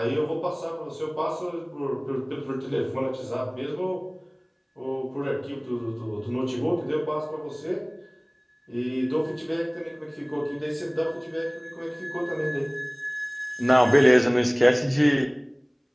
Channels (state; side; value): identical; both; correlation 1.00